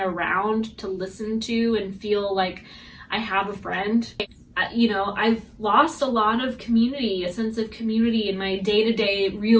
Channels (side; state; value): both; identical; correlation 1.00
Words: around to listen to and feel like I have a friend. You know, I've lost a lot of community, a sense of community in my day-to-day